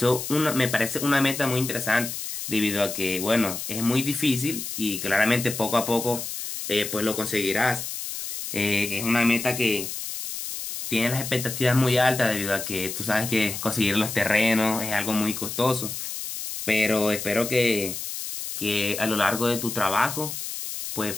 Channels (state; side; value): noise; left; hiss, 6 dB below the sound